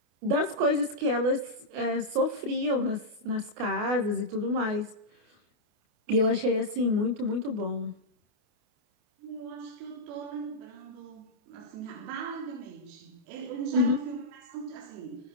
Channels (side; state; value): left; late; 28 ms